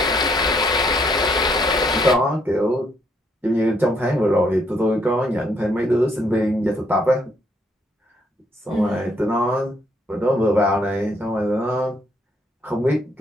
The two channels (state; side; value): normal; both; correlation 0.71